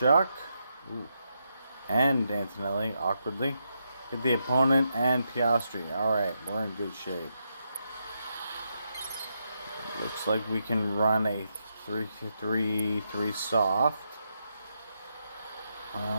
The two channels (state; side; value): inverted; both; correlation -0.82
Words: Ooh. And Antonelli, awkwardly. Get the opponent and Piastri. Alright, we're in good shape. Looks like we can run a 3-3 soft.